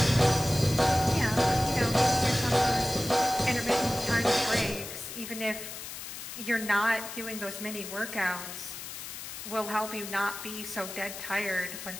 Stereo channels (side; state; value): left; noise; hiss, 10 dB below the sound